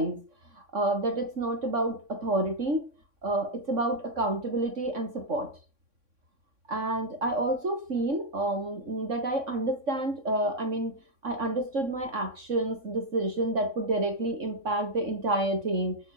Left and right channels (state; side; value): late; left; 3.6 ms